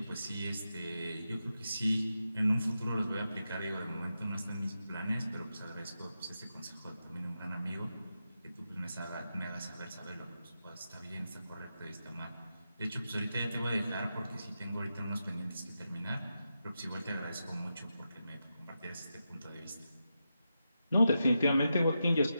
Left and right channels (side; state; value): both; inverted; correlation -0.88